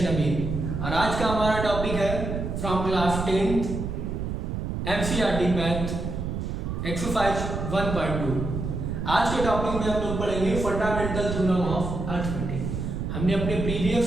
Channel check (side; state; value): right; noise; rumble, 3 dB below the sound